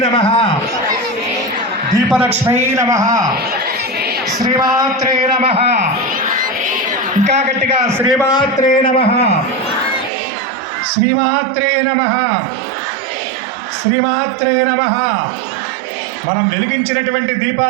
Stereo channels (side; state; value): left; drops out; at 10.1 s